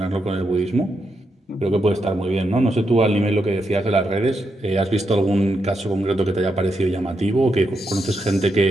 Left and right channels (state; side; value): normal; both; correlation 0.83